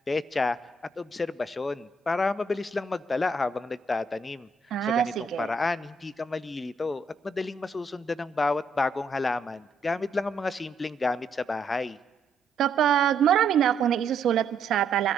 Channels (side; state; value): left; quieter; 3.0 dB